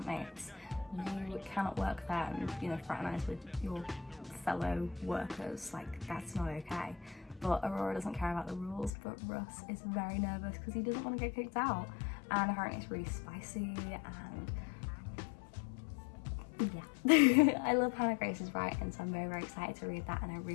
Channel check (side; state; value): right; drops out; at 8.9 s